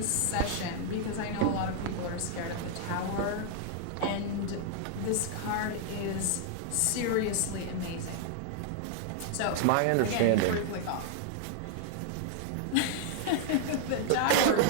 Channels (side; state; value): both; different; correlation -0.01